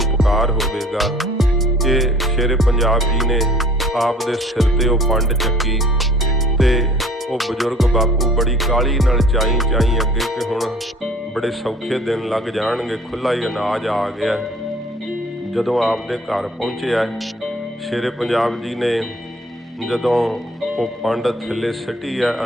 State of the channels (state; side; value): normal; both; correlation 0.52